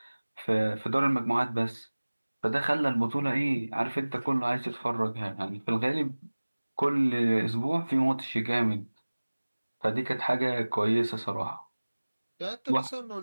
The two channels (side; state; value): both; inverted; correlation -1.00